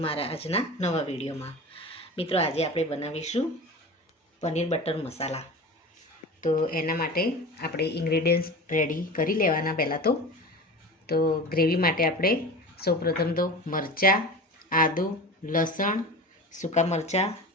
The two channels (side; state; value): both; normal; correlation 0.32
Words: મારા આજના નવા વિડીયોમાં. મિત્રો, આજે આપણે બનાવીશું પનીર બટર મસાલા. તો એના માટે આપણે ઇન્ગ્રેડિયન્ટ્સ રેડી કરી લેવાના. પહેલાં તો ગ્રેવી માટે આપણે સૌપ્રથમ તો મરચાં, આદુ, લસણ, સૂકા મરચાં,